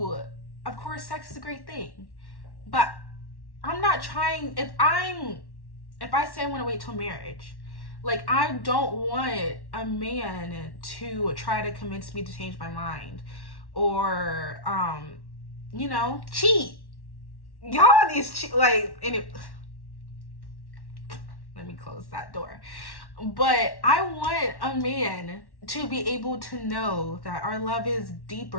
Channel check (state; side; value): late; right; 1.1 ms